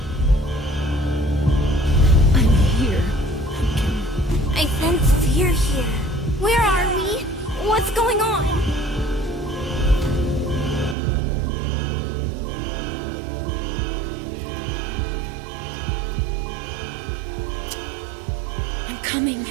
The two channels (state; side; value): drops out; left; at 11.0 s